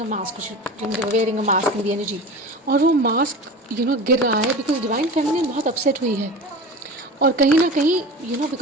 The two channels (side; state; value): both; normal; correlation 0.33